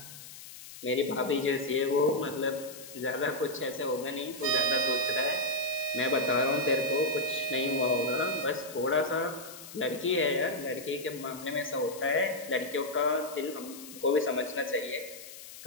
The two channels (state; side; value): noise; left; hiss, 15 dB below the sound